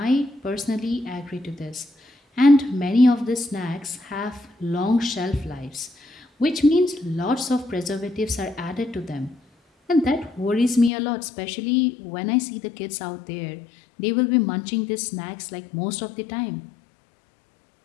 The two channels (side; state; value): right; drops out; at 10.9 s